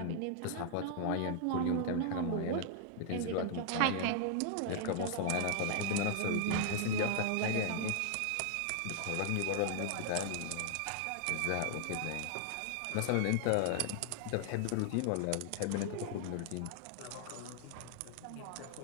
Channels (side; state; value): both; different; correlation -0.01